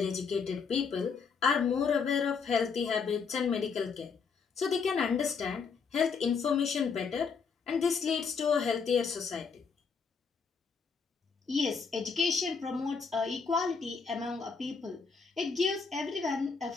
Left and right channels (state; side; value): quieter; right; 5.5 dB